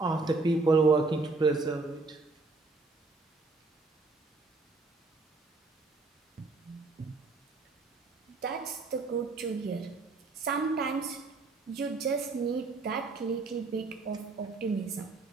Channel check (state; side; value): quieter; left; 3.7 dB